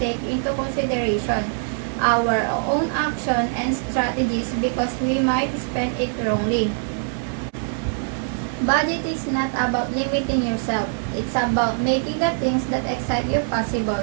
take into consideration our own action and strategies, because we might spend it wrongly. Budget is not about limiting yourself. It's about making the things that excite you possible.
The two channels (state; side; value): silent; left; 62 dB below the other